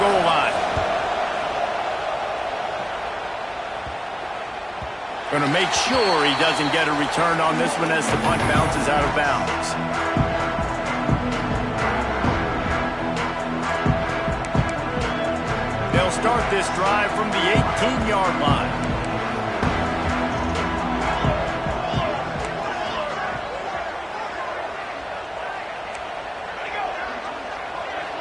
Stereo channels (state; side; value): identical; both; correlation 1.00